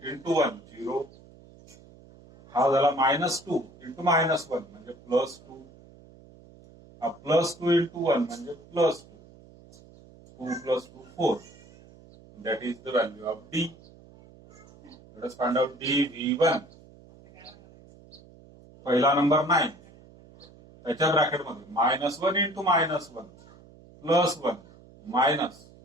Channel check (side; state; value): right; noise; hum, 23 dB below the sound